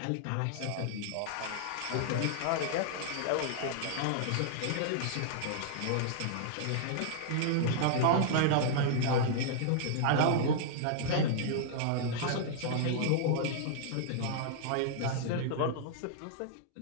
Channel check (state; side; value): different; both; correlation -0.01